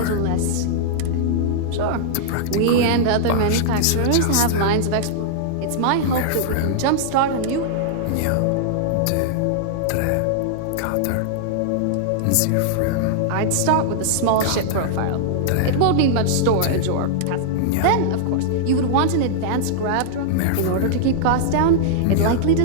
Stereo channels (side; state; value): both; different; correlation -0.01